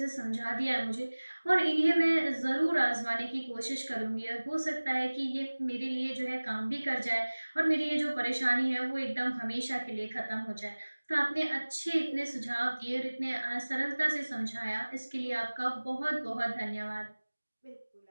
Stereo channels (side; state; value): both; inverted; correlation -1.00